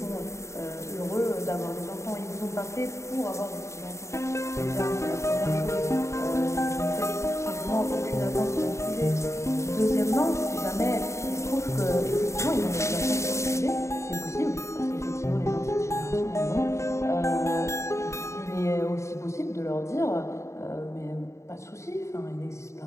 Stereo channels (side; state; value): right; late; 0.14 ms